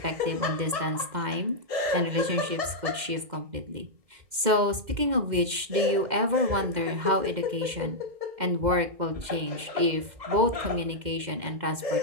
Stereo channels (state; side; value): late; left; 2.1 ms